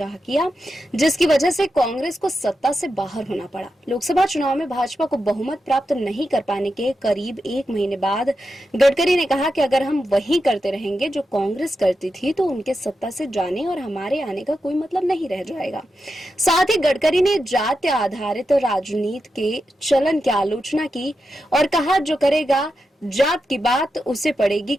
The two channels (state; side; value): normal; both; correlation 0.88